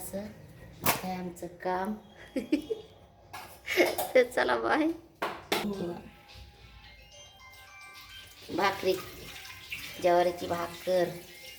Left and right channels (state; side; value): identical; both; correlation 1.00